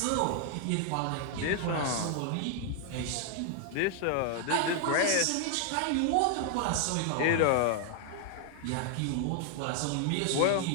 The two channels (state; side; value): different; both; correlation 0.00